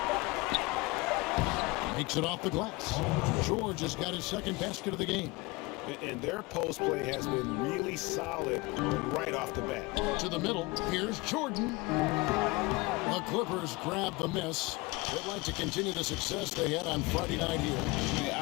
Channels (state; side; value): quieter; right; 23.7 dB